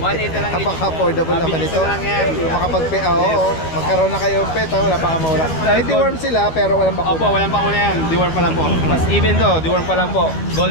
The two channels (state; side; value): late; right; 12 ms